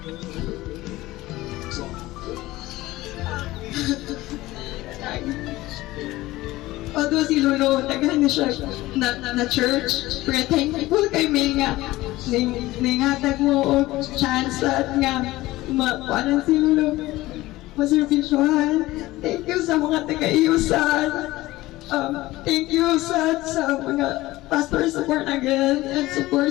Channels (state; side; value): quieter; right; 18.0 dB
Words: Although si Lolo, tagahan na siya na church, pero thankful kay May nga, ningatag mo o chance at nga, makuanan si Lolo, maservisyohan. Thank you sa mga taga-iusan. Thank you sa mga pastor support again and support